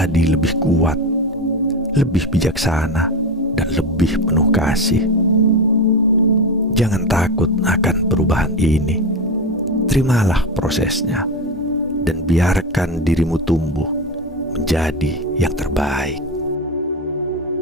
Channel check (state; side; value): normal; both; correlation 0.18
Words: lebih kuat, lebih bijaksana, dan lebih penuh kasih. Jangan takut akan perubahan ini. Terimalah prosesnya dan biarkan dirimu tumbuh menjadi yang terbaik.